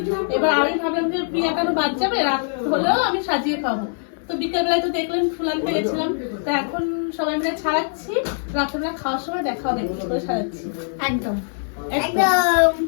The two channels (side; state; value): right; silent; 64 dB below the other